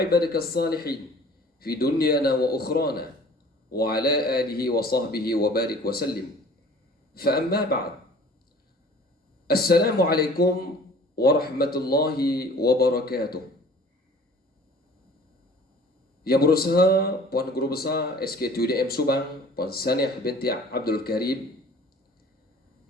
الصالحين في دنيانا وأخرانا وعلى آله وصحبه وبارك وسلم فأما بعد السلام عليكم ورحمة الله وبركاته. Yang berusaha Puan Guru Besar SKTUDM Subang Puan Saniah binti Abdul Karim,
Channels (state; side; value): normal; both; correlation 0.49